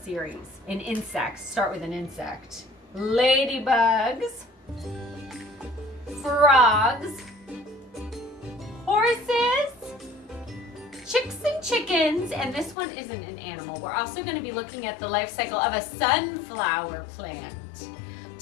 series. In insects. Start with an insect. Ladybugs, frogs, horses, chicks and chickens, and this one isn't an animal. We're also going to be looking at the life cycle of a sunflower plant.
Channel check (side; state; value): right; drops out; at 12.8 s